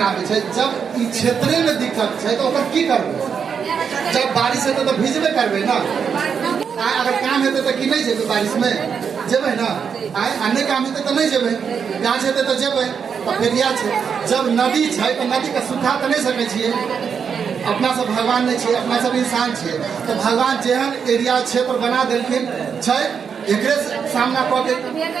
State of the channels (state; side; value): quieter; left; 6.7 dB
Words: आवे छे? जब ई क्षेत्र में दिक्कत छे तो ओकर की करबे? जब बारिश हेतै तो भिजबे करबे ना। अगर काम हेतै तो कि नहीं जेबे? बारिश में जेबे ना। अन्य काम हेतै तो नहीं जेबे, गाछ हेतै तो जेबे। तो फिर या छे, जब नदी छे तो नदी के सुखा तो नहीं सकै छियै। अपना सब भगवान नहीं छे, अपना सब इंसान छे। तो भगवान जेहन एरिया क्षेत्र बना देलखिन छे, एकरे सामना कऽ के